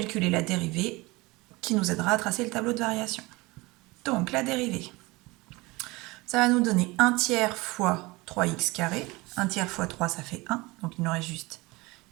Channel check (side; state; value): left; quieter; 22.9 dB